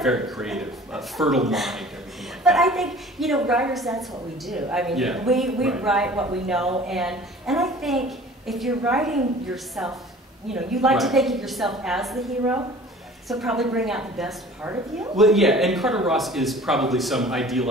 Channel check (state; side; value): normal; both; correlation 0.46